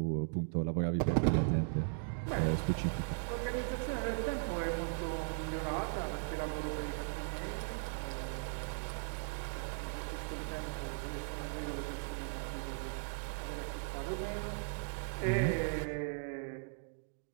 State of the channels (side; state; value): left; silent; digital silence